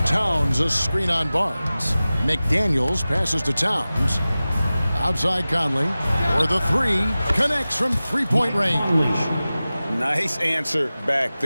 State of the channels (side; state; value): both; inverted; correlation -0.97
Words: Towns a screen on Barnes. McDaniels passes to Towns. Outside Conley. For the 3. Connects from 3-point range. Nice answer back